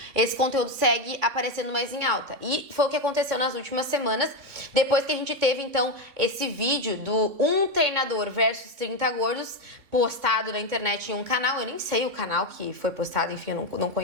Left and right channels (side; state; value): left; late; 3.6 ms